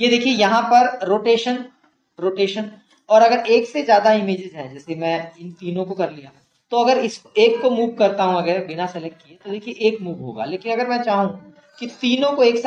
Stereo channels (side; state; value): both; identical; correlation 1.00